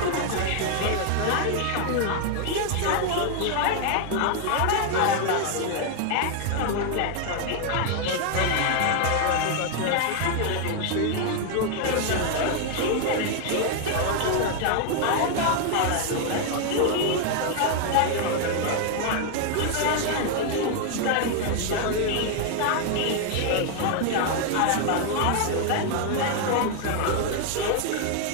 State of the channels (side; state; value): both; different; correlation 0.00